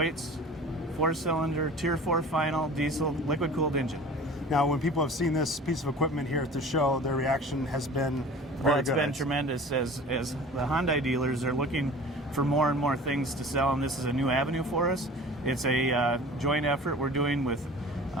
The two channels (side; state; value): both; normal; correlation 0.41